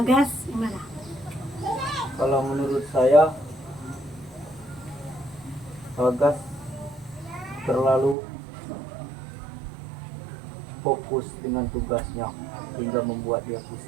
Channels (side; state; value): left; drops out; at 8.2 s